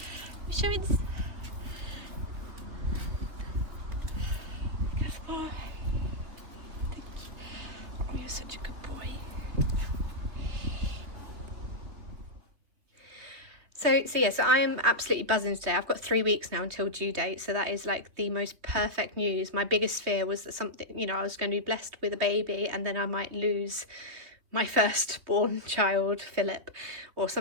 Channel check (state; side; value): late; left; 3.3 ms